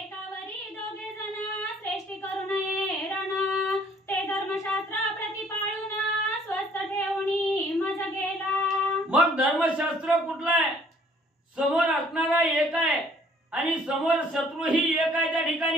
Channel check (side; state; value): both; normal; correlation 0.59